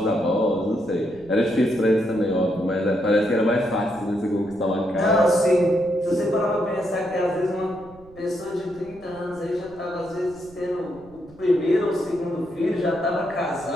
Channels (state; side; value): noise; right; rumble, 23 dB below the sound